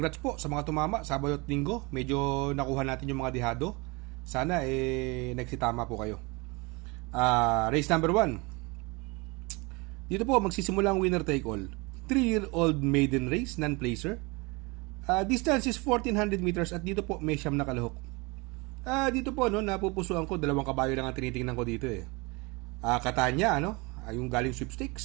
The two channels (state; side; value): quieter; left; 26.8 dB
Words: po sa mga tumama Sabado at Linggo. Medyo nakuha natin yung mga dihado. Sana nagsitama po kayo. Race number 1. Dito po magsisimula ang winner take all. 3-year-old maiden race, non-placer. Distance is 1400 meters at dito po may siyam na kalahok. Dito po napupusuan ko, dalawang kabayo lang ang tinitingnan ko dito eh. Katanya, yung galing